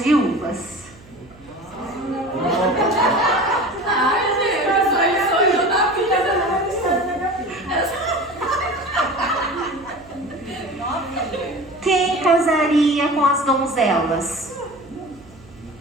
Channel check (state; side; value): noise; right; hum, 24 dB below the sound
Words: Quem casaria com as donzelas?